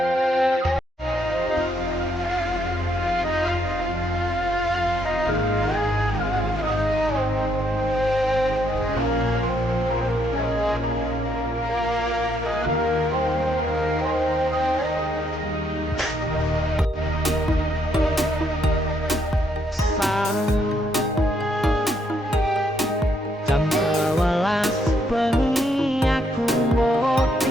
Jam 12 bengi aku mau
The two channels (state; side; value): normal; both; correlation 0.73